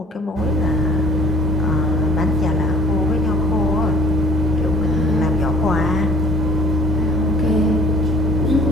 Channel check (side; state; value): both; normal; correlation 0.51